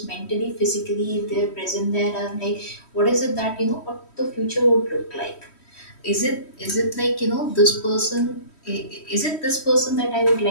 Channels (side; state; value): right; late; 3.1 ms